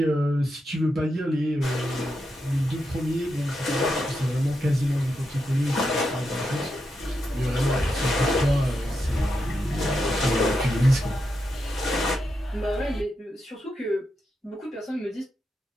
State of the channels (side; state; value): both; normal; correlation 0.85